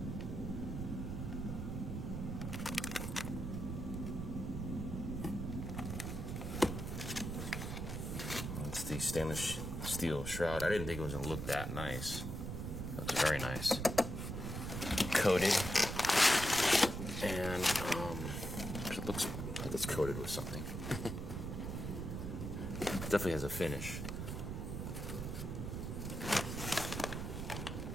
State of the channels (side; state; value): right; noise; rumble, 4 dB below the sound